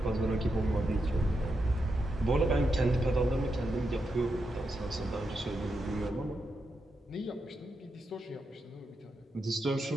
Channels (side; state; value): both; normal; correlation 0.85